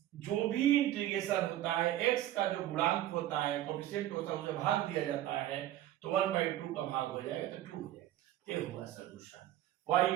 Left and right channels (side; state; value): left; quieter; 13.3 dB